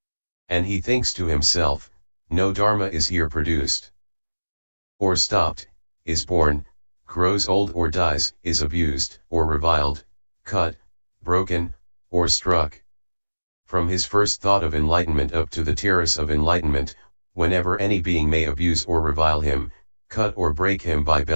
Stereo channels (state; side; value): inverted; both; correlation -1.00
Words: And he thinks to himself, no dharma is here produced, or stopped, is born, grows old or dies, is abused, or reviled, cut, broken, or struck. From his first thought of enlightenment up to the terrace of enlightenment, whenever any being may abuse or revile him, cut or break him by